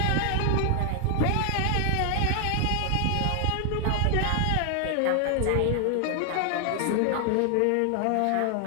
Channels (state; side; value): different; both; correlation 0.00